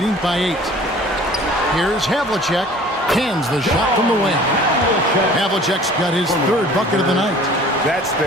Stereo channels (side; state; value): both; normal; correlation 0.48